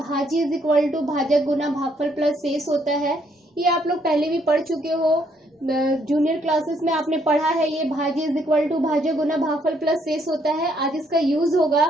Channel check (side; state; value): both; normal; correlation 0.70